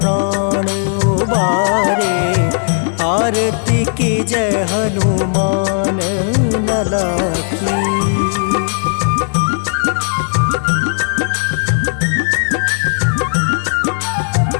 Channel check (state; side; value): silent; right; digital silence